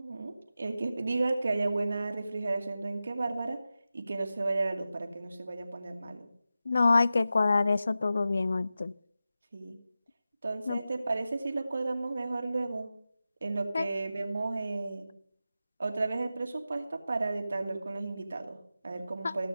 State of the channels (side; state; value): both; inverted; correlation -0.92